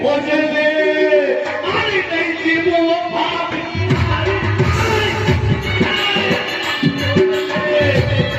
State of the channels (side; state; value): both; identical; correlation 1.00